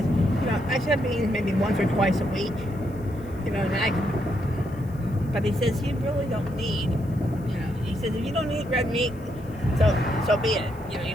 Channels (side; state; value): left; noise; hiss, 28 dB below the sound